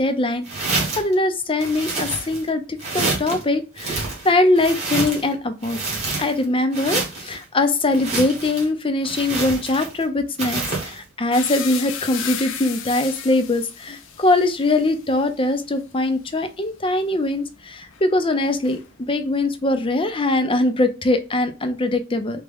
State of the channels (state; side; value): normal; both; correlation 0.48